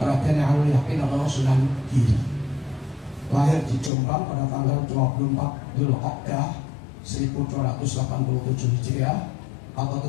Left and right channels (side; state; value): right; drops out; at 3.9 s